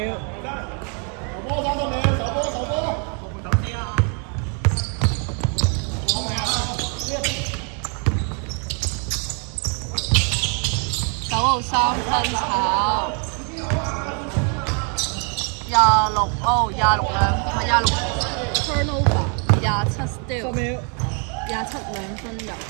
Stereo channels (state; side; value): quieter; left; 39.5 dB